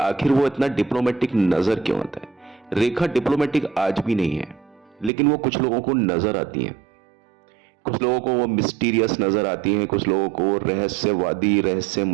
वो इतना डिप्लोमेटिक नजर क्यों आता है। रेखा डिप्लोमेटिक आज भी नहीं है, लेकिन वो कुछ लोगों को नजर आती हैं। कुछ लोगों को वो मिस्टीरियस नजर आती हैं, कुछ लोगों को वो रहस्यवादी,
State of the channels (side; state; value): left; drops out; at 5.1 s